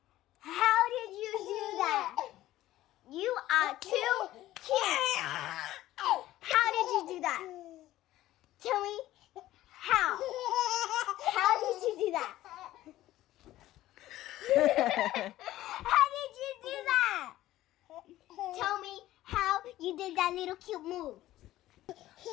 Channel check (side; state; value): right; quieter; 14.9 dB